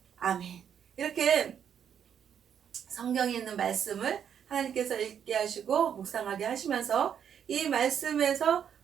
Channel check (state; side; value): quieter; left; 8.4 dB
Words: 아멘. 이렇게 성경에 있는 말씀을 하나님께서 읽게 하시고 묵상하게 하시면서 이 말씀에서